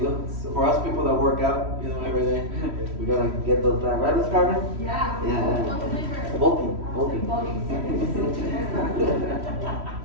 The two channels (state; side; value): late; left; 3.1 ms